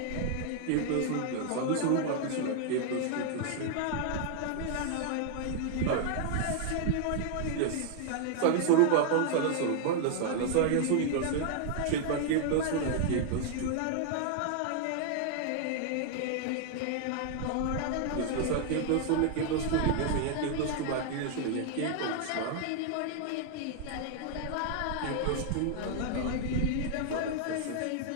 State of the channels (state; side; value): different; both; correlation 0.00